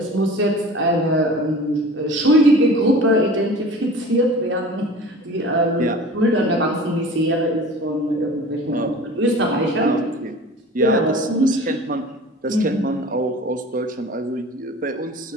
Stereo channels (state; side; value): normal; both; correlation 0.40